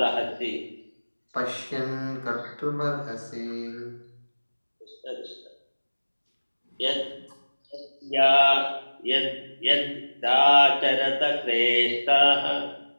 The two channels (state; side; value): inverted; both; correlation -1.00